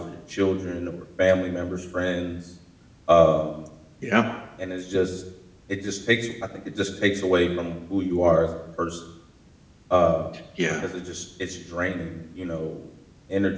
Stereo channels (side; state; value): both; identical; correlation 1.00